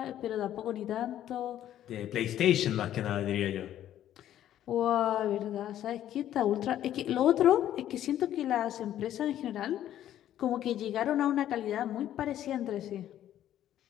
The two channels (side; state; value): right; quieter; 11.7 dB